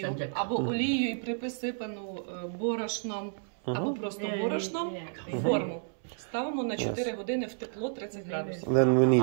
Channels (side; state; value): left; silent; 57 dB below the other